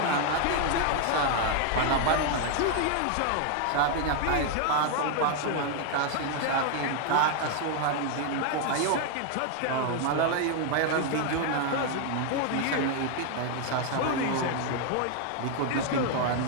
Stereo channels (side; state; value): both; different; correlation 0.00